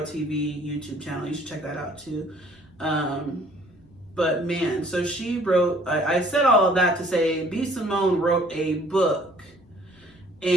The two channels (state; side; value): noise; left; rumble, 30 dB below the sound